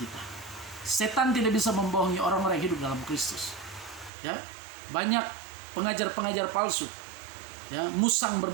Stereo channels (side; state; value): left; drops out; at 4.1 s